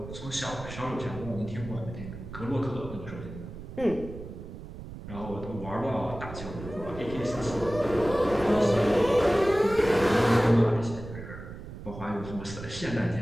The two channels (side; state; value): right; noise; rumble, 12 dB below the sound